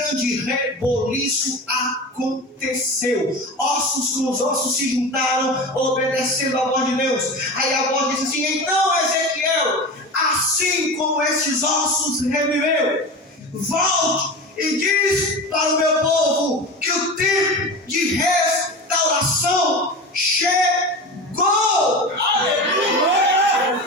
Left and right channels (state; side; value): normal; both; correlation 0.29